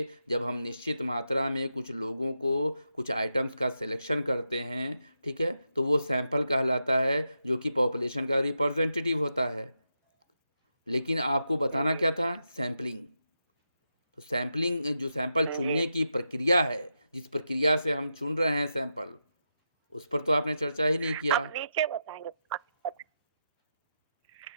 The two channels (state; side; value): inverted; both; correlation -0.86